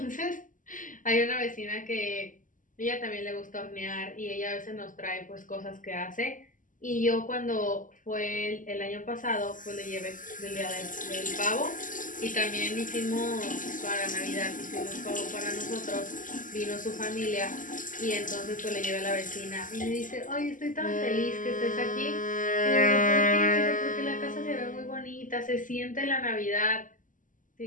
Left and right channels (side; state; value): right; late; 0.38 ms